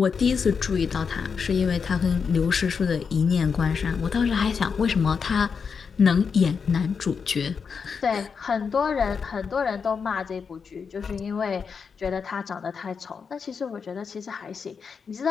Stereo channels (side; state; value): right; quieter; 5.9 dB